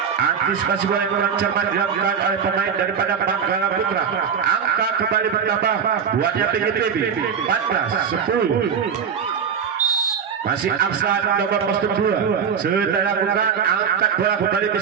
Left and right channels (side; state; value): left; quieter; 7.0 dB